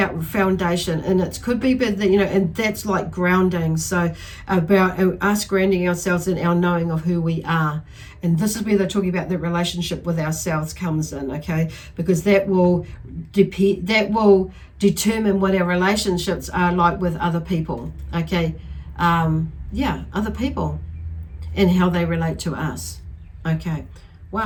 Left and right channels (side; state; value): both; identical; correlation 1.00